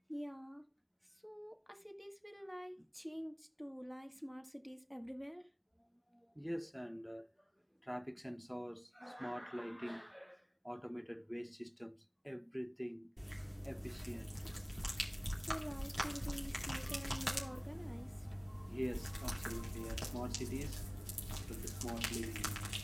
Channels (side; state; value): both; identical; correlation 1.00